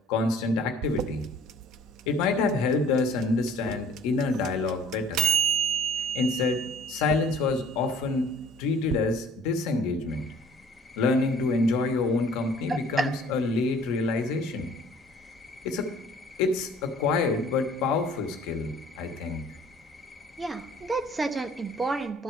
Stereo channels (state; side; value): normal; both; correlation 0.54